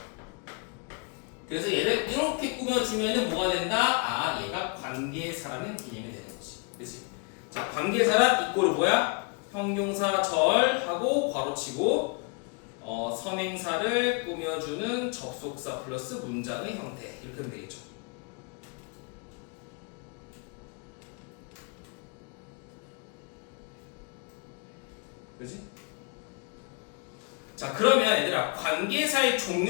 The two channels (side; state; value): right; quieter; 33.8 dB